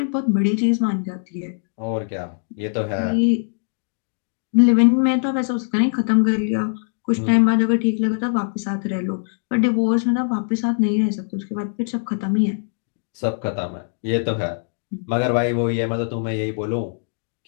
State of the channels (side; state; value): right; silent; digital silence